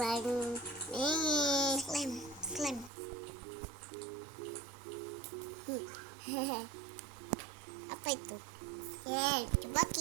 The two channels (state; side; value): drops out; left; at 2.9 s